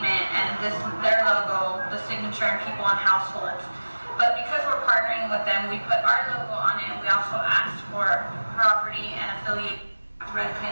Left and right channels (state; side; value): inverted; both; correlation -1.00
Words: and their logo, the signature, and people on households. But because we're partnering with them, we put our logo on it. We also asked for property and affiliate